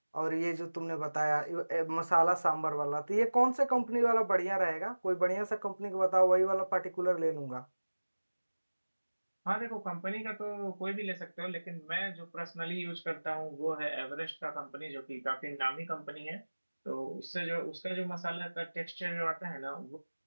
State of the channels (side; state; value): both; inverted; correlation -1.00